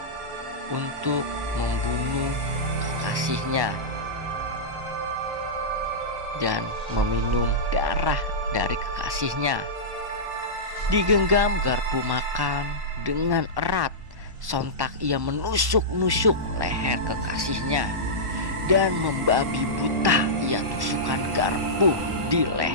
untuk membunuh kekasihnya dan meminum darah dari kekasihnya. Digenggam garpu makan dengan erat, sontak ia menusuk-nusuk leher kekasihnya dan membabi buta ia tusukkan garpu di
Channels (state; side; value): late; left; 1.1 ms